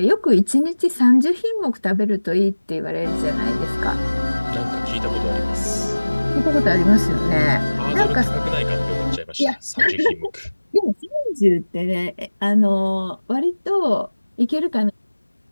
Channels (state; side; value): inverted; both; correlation -1.00